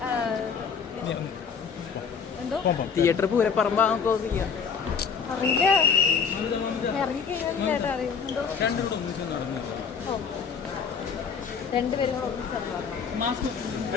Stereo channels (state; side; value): quieter; right; 6.2 dB